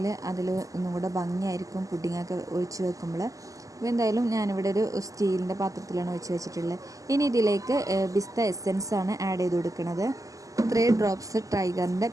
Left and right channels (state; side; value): late; left; 0.16 ms